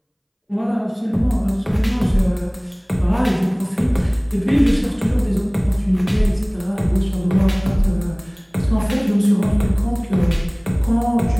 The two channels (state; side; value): identical; both; correlation 1.00